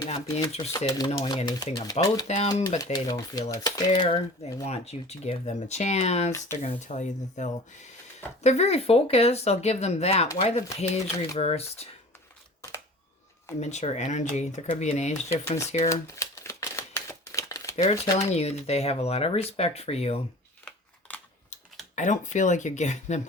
not be interested in knowing anything about them, but they don't feel it's fair. They want you to give them a chance. They're going to tell you that they're very focused. I'll give them that. Why the page reversed? Immature energy. There could be an age difference here. They're telling you that they have a lot of respect for you. I don't feel like you're giving them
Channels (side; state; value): both; normal; correlation 0.42